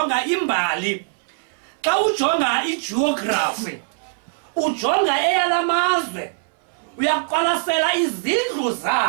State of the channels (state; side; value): silent; left; 61 dB below the other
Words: imbali, xa ujonga igeography, ujonga eyalamazwe, uyaqwalasela izindlu